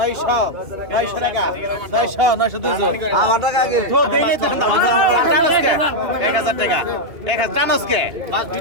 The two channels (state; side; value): late; left; 2.9 ms